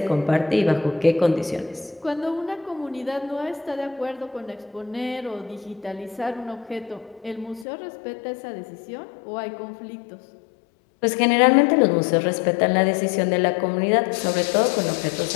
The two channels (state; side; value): drops out; right; at 7.7 s